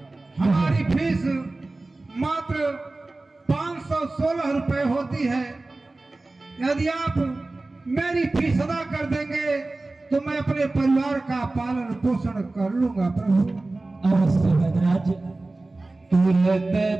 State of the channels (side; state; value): left; quieter; 3.1 dB